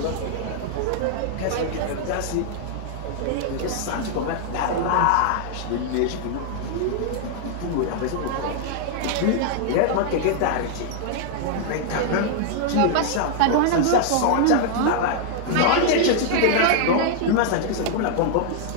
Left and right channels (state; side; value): different; both; correlation -0.01